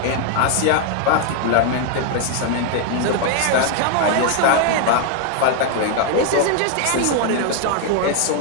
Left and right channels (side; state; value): both; different; correlation 0.00